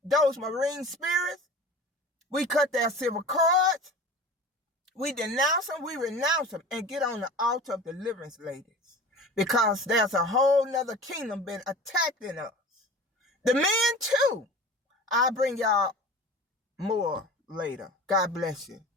those marine spirits. We cut their civil cords. We denounce them, we renounce them, and get on the altar of deliverance, ladies. Because there's a whole nother kingdom been attacking us. The men too. I'll bring y'all more later. God bless you.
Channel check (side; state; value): both; normal; correlation 0.37